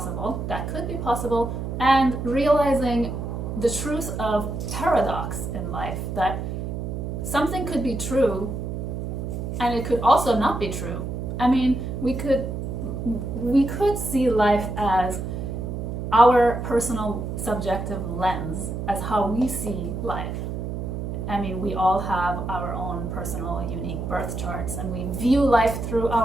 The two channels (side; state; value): right; noise; hum, 4 dB below the sound